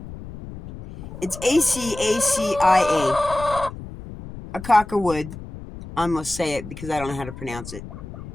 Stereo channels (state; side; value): noise; left; rumble, 13 dB below the sound